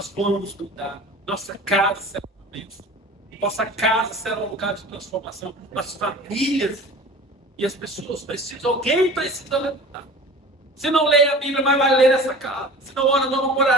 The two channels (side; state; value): both; normal; correlation 0.40